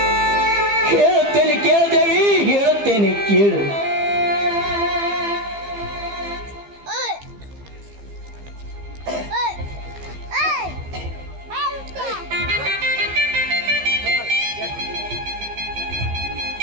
ಹೇಳುತ್ತೇನೆ ಕೇಳ್ದೇವಿ, ಹೇಳುತ್ತೇನೆ ಕೇಳು.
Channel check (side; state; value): left; late; 15 ms